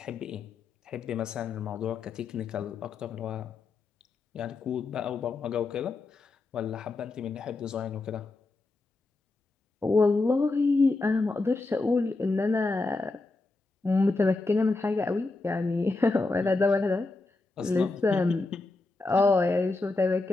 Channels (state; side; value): quieter; right; 3.5 dB